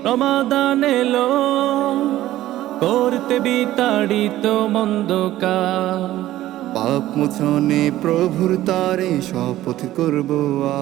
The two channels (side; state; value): left; quieter; 14.6 dB